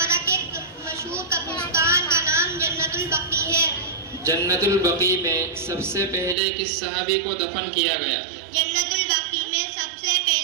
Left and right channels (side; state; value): left; drops out; at 6.4 s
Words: کے مشہور قبرستان کا نام جنت البقیع ہے۔ جنت البقیع میں سب سے پہلے کس صحابی کو دفن کیا گیا؟ جنت البقیع میں سب سے